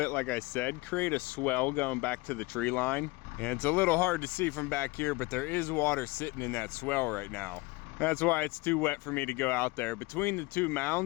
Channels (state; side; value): quieter; right; 23.2 dB